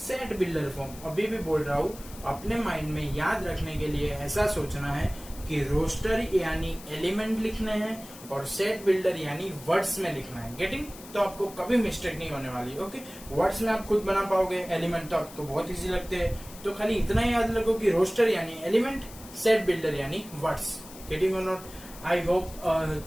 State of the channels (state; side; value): noise; left; hiss, 17 dB below the sound